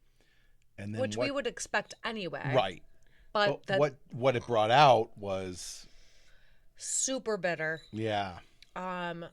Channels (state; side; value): identical; both; correlation 1.00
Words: and then Which we would expect anyway. right. But that What it brought out was super bitter. yeah.